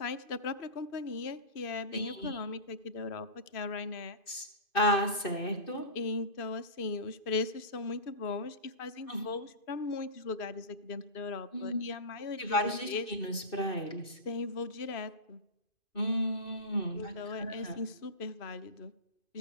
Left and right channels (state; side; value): late; right; 2.6 ms